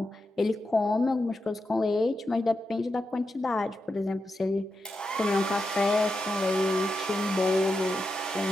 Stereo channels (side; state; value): both; normal; correlation 0.87